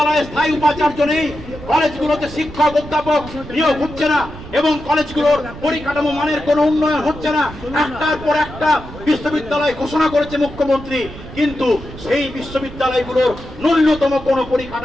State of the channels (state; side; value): noise; right; rumble, 14 dB below the sound